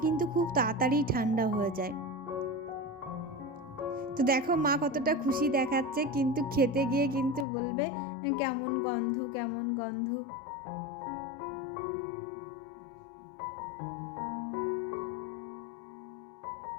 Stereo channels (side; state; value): right; drops out; at 7.5 s